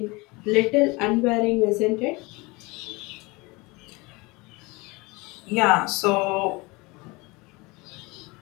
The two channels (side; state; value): right; quieter; 24.8 dB